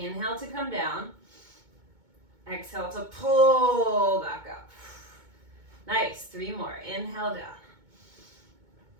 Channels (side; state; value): left; late; 2.2 ms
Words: to come down. Exhale to pull back up. Nice, 3 more. Inhale down.